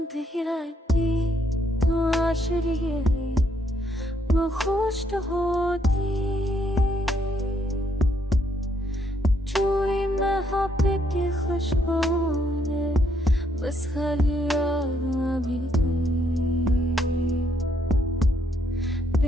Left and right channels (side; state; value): both; normal; correlation 0.73